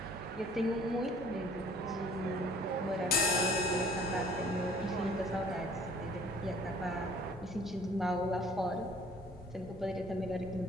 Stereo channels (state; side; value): normal; both; correlation 0.54